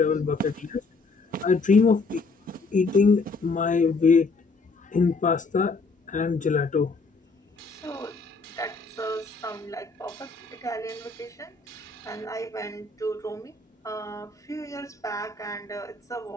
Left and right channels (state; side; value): quieter; right; 3.9 dB